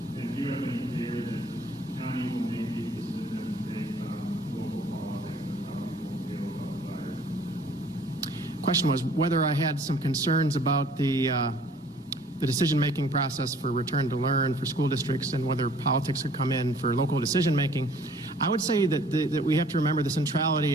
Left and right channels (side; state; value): both; normal; correlation 0.55